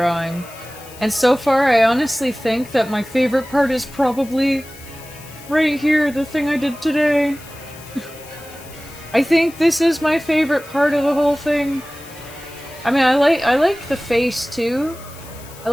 And so far, I honestly think that my favorite part is probably right here, the thing I did today. I think this is my favorite part of the whole thing. I mean, I like the face too. I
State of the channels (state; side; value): noise; left; hiss, 20 dB below the sound